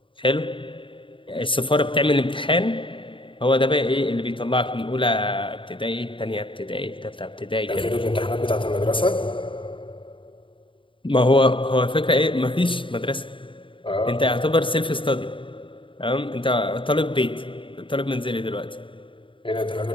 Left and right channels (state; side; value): late; right; 0.25 ms